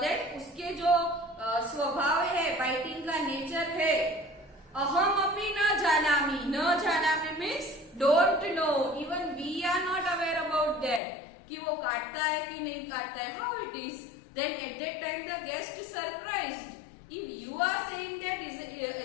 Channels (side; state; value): right; drops out; at 11.0 s